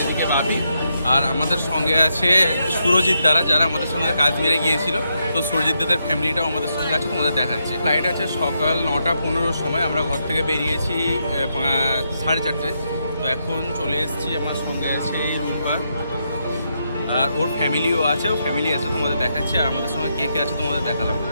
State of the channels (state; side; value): inverted; both; correlation -0.81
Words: এদিকে বাপি। আর আমাদের সঙ্গে আছে সুরজিৎ দ্বারা, যারা আমাদের সঙ্গে কাশ্মীরে গিয়েছিল। তো সুরজিৎ দাদের ফ্যামিলিটাও আমাদের সঙ্গে আছে, তোমাদের দেখাচ্ছি। ফ্লাইট আছে সকাল 9টা 15 সময়। আমরা ঘর থেকে বেরিয়েছি 4:30। তো এখন চলে এসেছি। আমার সঙ্গে আছে রুম্পা আর ওর ফ্যামিলিও আছে, ও ফ্যামিলি আছে, তোমাদের দেখাচ্ছি। আর আমাদের সঙ্গে কে কে আছে তোমাদের দেখালাম।